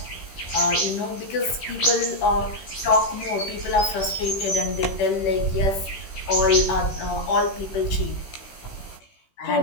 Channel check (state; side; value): late; right; 16 ms